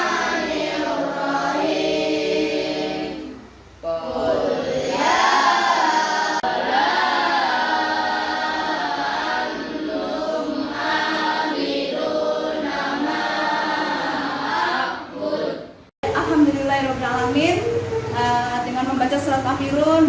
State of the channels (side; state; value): both; identical; correlation 1.00